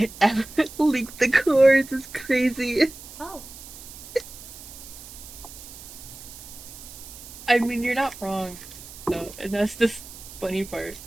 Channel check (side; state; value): right; noise; hiss, 15 dB below the sound